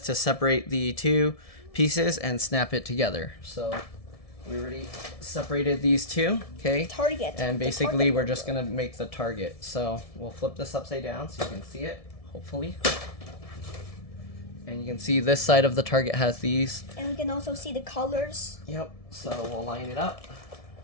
to separate the 2 pieces and snap it together. So we already separated these 2, okay? Target. And basically we're just gonna make the target. So we'll flip this upside down so you can see it, hopefully. And you can see this side of the target has these. And we can also see the colors. Yep, so we'll line it up.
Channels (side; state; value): right; late; 1.7 ms